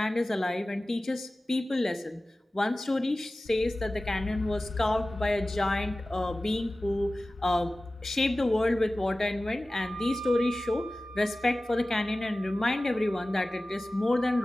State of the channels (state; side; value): normal; both; correlation 0.97